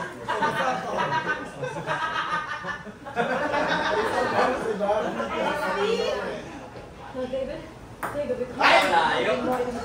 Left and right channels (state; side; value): identical; both; correlation 1.00